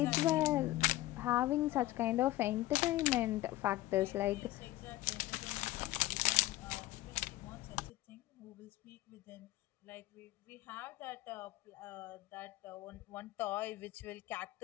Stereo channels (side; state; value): right; quieter; 16.6 dB